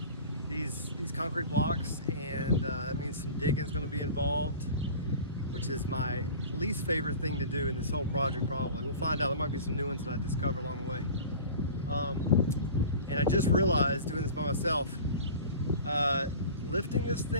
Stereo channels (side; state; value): both; inverted; correlation -0.39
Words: these concrete blocks, and that means some digging is gonna be involved, which is my least favorite thing to do in this whole project probably. We'll find out. There might be some new ones that I discover along the way. And I just realized doing this by myself, lifting this